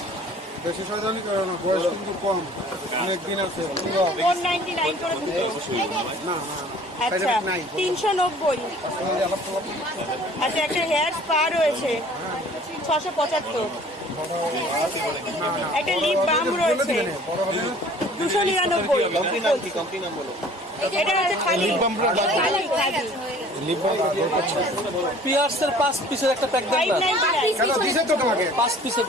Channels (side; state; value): both; normal; correlation 0.50